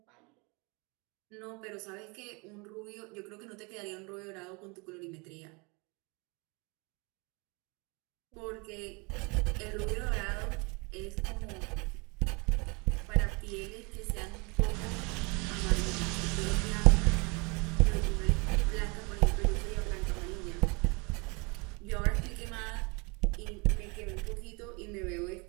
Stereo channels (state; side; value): quieter; left; 29.6 dB